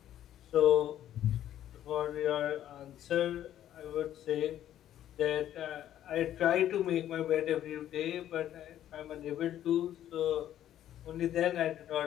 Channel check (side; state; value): right; quieter; 11.6 dB